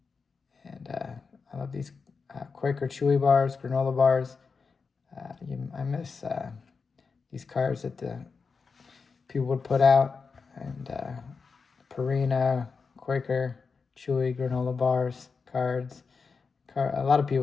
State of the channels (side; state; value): right; quieter; 5.0 dB